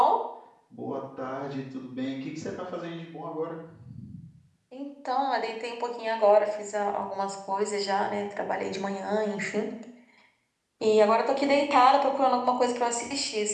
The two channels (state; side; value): identical; both; correlation 1.00